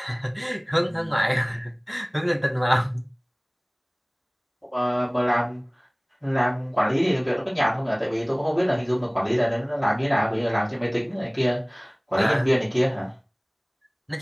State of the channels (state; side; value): identical; both; correlation 1.00